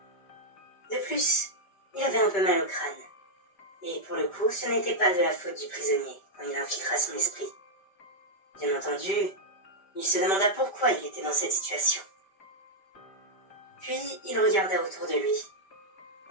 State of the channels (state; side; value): late; right; 5.1 ms